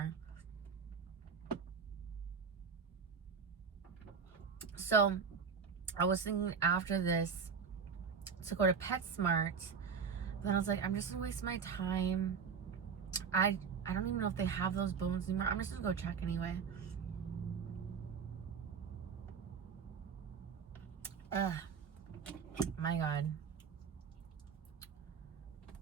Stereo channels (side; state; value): left; quieter; 6.1 dB